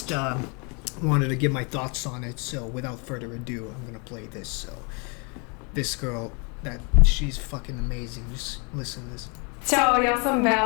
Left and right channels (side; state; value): right; quieter; 33.7 dB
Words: wanted to give my thoughts on it, so without further ado, I'm gonna play this. So this girl, she's fucking amazing. Just listen to this. Ćao, ja sam